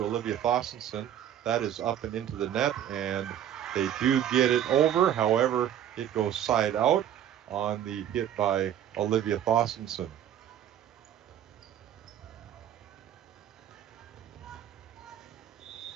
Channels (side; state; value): left; quieter; 10.4 dB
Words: Olivia Thossenson. That is up and into the net, and they do get it over. However, It goes side out on the hit by Olivia Thorstensen.